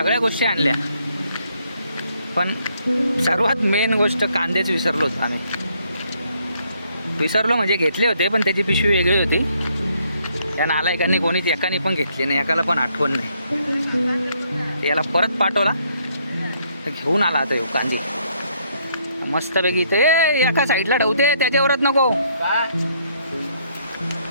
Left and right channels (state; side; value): inverted; both; correlation -0.70